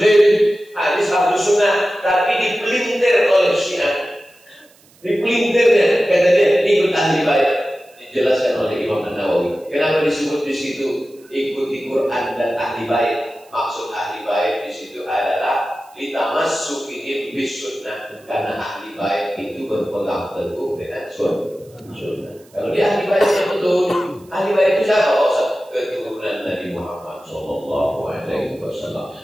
hadis Ahlus Sunnah, tapi dipelintir oleh Syiah. Dipelintirnya, kata dia, ikut ahli bait. Dijelaskan oleh Imam An-Nawawi. Kenapa disebut di situ ikuti Quran dan ahli bait? Maksud ahli bait di situ adalah litamassukihim bis sunnah, karena ahli bait itu berpegang teguh dengan sunnah. Kalau dia ahli bait yang betul, ahli bait itu siapa? Keturunan Nabi Muhammad Sallallahu Alaihi Wasallam.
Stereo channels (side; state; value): right; noise; hiss, 29 dB below the sound